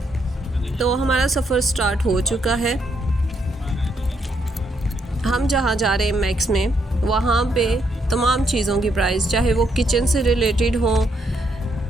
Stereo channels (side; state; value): both; normal; correlation 0.75